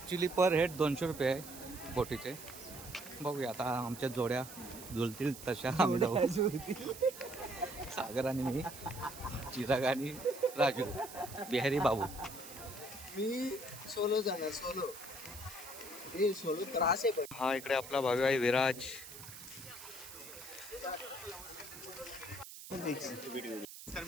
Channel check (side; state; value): right; noise; hiss, 13 dB below the sound